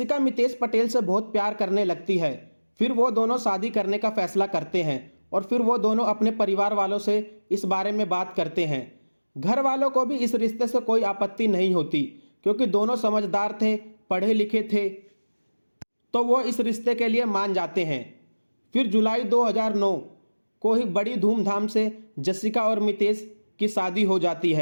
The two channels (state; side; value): inverted; both; correlation -1.00